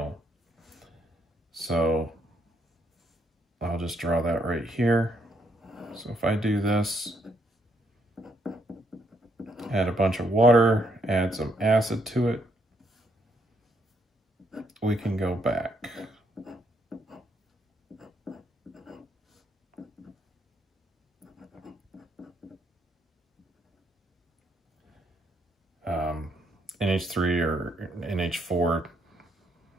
So I'll just draw that right here. So if I do this, add a bunch of water, add some acid to it, we can go back. NH3 or NH4,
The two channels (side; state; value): both; normal; correlation 0.73